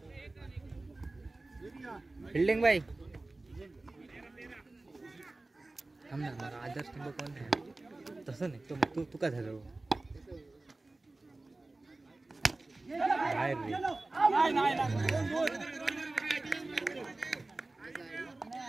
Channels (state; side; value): quieter; left; 3.1 dB